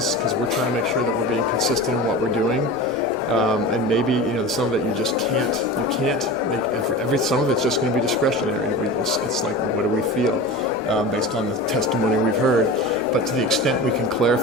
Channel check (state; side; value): normal; both; correlation 0.31